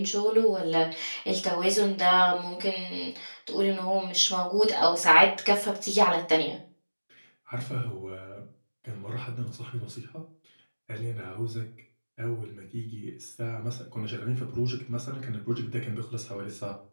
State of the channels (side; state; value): both; inverted; correlation -1.00